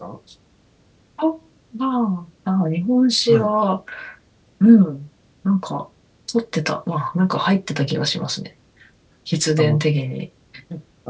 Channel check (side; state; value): both; identical; correlation 1.00